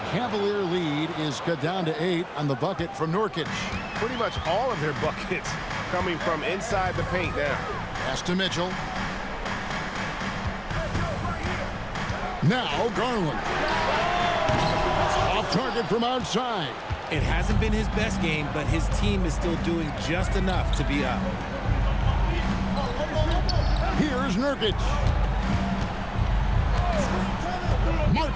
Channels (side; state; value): both; identical; correlation 1.00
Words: Cavalier lead is cut down to 8 on the bucket from Nurkic. Pretty much all of their buckets coming from inside the paint now. Pass to Mitchell. Now Garland. Off target from outside. It hasn't been his best game, but his team is still doing just enough to be up. Here's Nurkic.